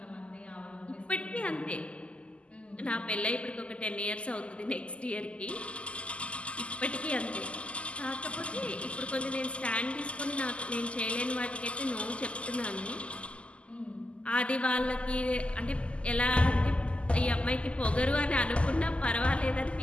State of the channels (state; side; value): late; right; 0.057 ms